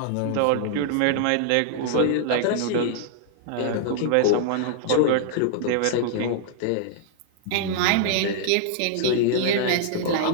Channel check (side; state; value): both; different; correlation -0.01